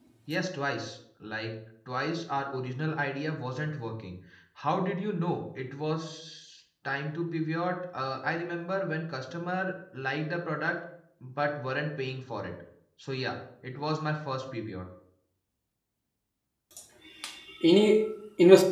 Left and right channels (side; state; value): both; identical; correlation 1.00